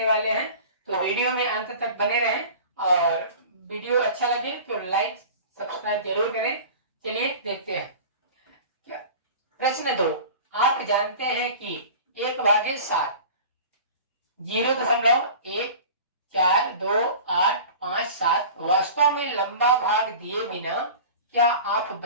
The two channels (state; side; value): inverted; both; correlation -0.38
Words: वाले हैं। तो वीडियो में अंत तक बने रहें और वीडियो अच्छा लगे तो लाइक सब्सक्राइब जरूर करें। चलिए देखते हैं। प्रश्न 2, आप जानते हैं कि 1/7 0.142857 वास्तव में लंबा भाग दिए बिना क्या आप